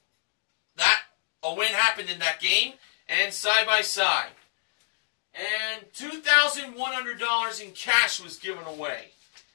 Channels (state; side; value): silent; right; digital silence